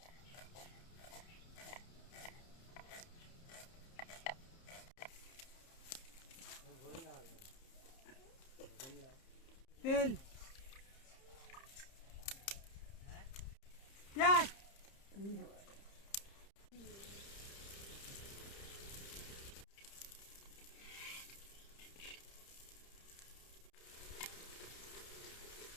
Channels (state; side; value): late; right; 30 ms